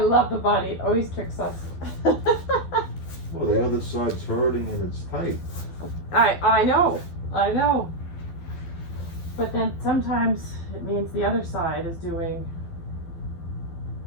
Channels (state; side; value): late; right; 12 ms